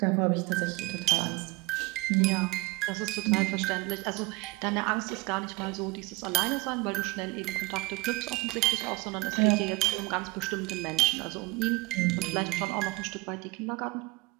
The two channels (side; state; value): left; quieter; 22.7 dB